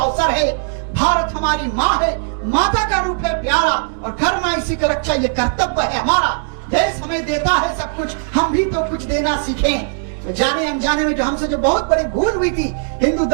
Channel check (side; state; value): left; silent; digital silence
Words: है। भारत हमारी माँ है, माता का रूप है प्यारा, और घर माँ इसी का रक्षा ये कर्तव्य है हमारा। देश हमें देता है सब कुछ, हम भी तो कुछ देना सीखें। तो जाने अनजाने में जो हमसे जो बहुत बड़ी भूल हुई थी, हिंदू